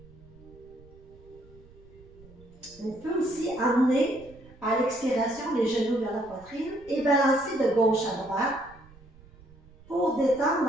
On peut aussi amener à l'expiration les genoux vers la poitrine et balancer de gauche à droite pour détendre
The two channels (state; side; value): noise; right; rumble, 23 dB below the sound